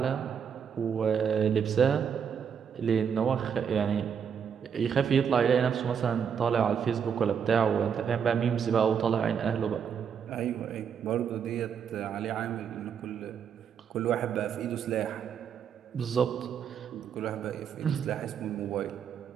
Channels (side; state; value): left; quieter; 7.4 dB